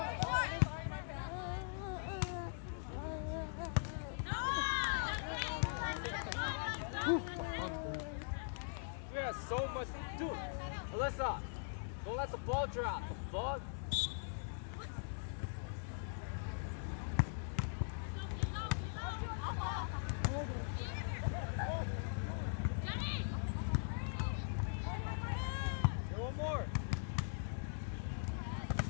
We have so much to do. Alyssa, don't let the ball drop. Ball. One more.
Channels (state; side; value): silent; right; digital silence